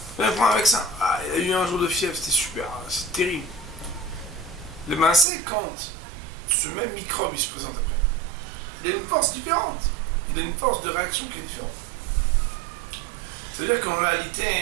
On prend un vaccin. Ah, il a eu un jour de fièvre, c'était super, c'est terrible. Le c'est quand ce même microbe il se présente après. Il a une force différente. Il a une force de réaction qui est différente. C'est-à-dire qu'en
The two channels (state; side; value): drops out; left; at 5.2 s